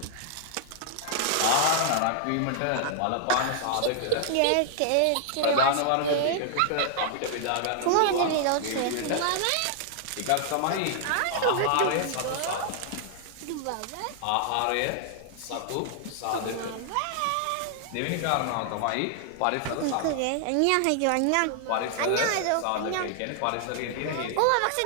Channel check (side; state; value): both; different; correlation 0.00